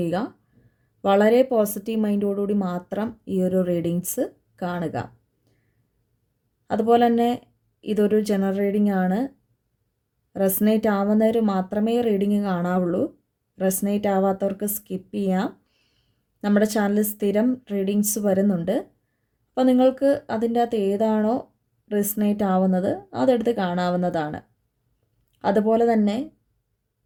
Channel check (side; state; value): both; identical; correlation 1.00